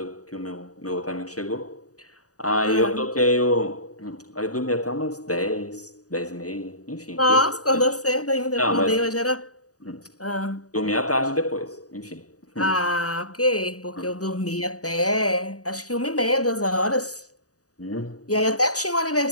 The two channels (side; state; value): right; late; 0.67 ms